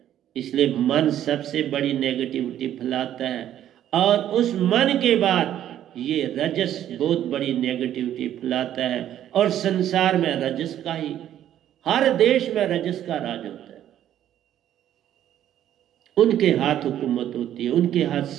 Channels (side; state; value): left; quieter; 11.3 dB